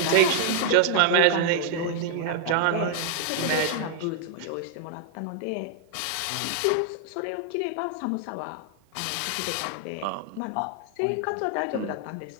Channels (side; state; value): both; different; correlation 0.00